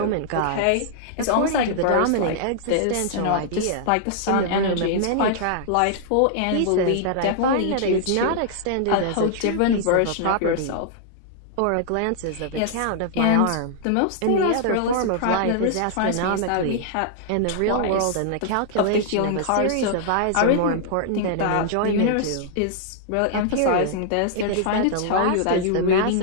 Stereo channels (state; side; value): different; both; correlation -0.01